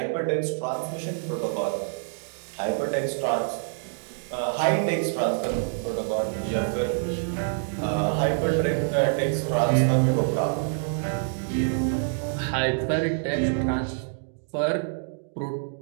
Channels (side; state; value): left; silent; digital silence